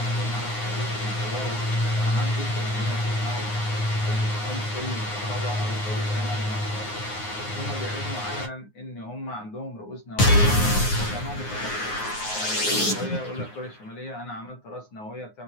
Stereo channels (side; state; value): right; late; 9.6 ms